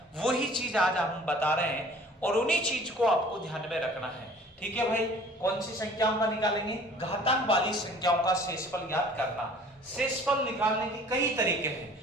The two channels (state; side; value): normal; both; correlation 0.50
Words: वही चीज आज हम बता रहे हैं, और उन्हीं चीज को आपको ध्यान में रखना है। ठीक है भाई, कौन सी संख्याओं का निकालेंगे? घातांक वाली संख्याओं का शेषफल ज्ञात करना। शेषफल निकालने के कई तरीके